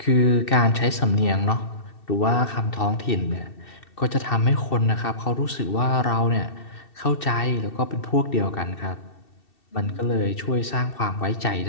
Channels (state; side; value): late; right; 2.7 ms